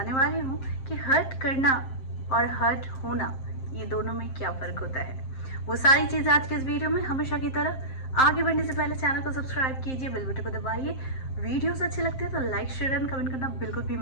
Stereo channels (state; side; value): late; right; 7.6 ms